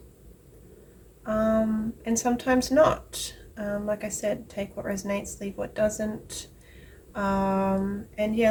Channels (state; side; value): identical; both; correlation 1.00